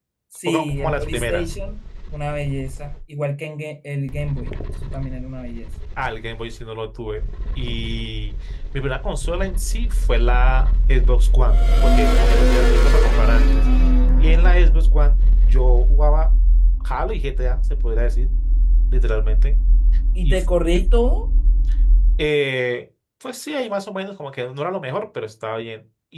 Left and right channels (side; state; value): both; identical; correlation 1.00